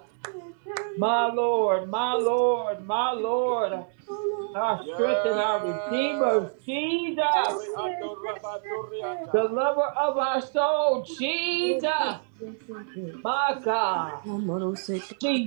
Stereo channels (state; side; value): silent; left; digital silence